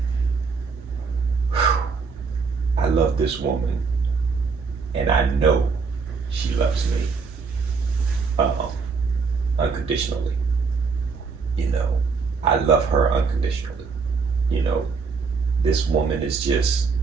I love this woman and I know she loves me unconditionally. You know, I love her unconditionally. You know, this woman is just,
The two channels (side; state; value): left; quieter; 5.0 dB